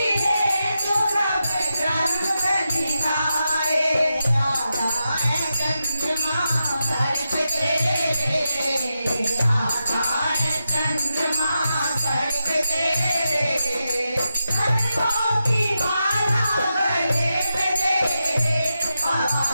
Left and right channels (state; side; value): inverted; both; correlation -0.88